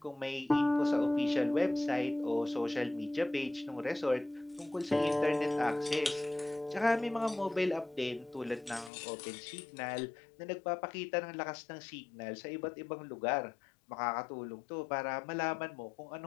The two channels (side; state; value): right; drops out; at 8.9 s